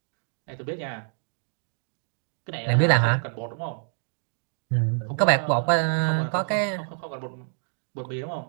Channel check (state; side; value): silent; left; digital silence